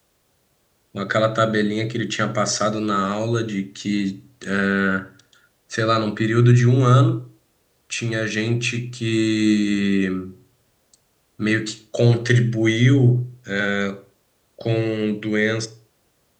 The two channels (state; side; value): identical; both; correlation 1.00